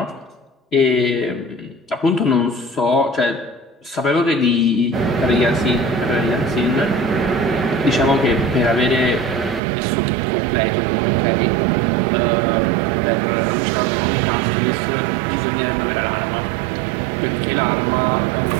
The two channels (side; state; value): left; drops out; at 9.6 s